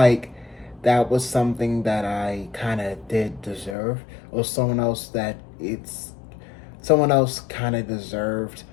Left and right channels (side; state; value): right; drops out; at 3.8 s